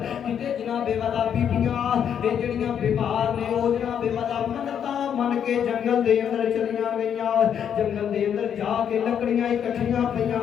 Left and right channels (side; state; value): right; quieter; 8.5 dB